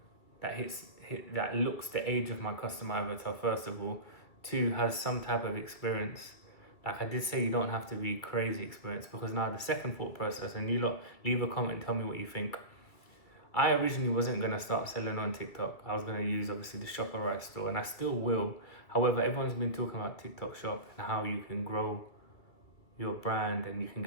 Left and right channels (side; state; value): right; late; 2.3 ms